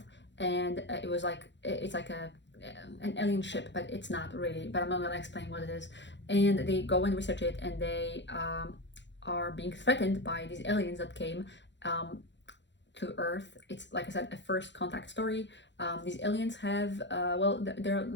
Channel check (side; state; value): right; late; 0.52 ms